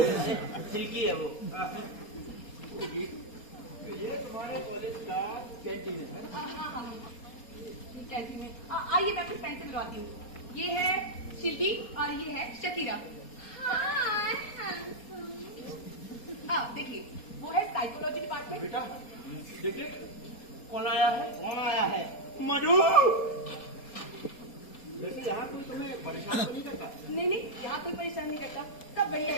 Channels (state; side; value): late; right; 4.3 ms